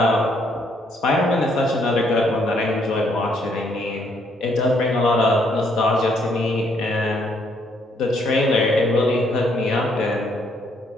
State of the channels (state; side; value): normal; both; correlation 0.70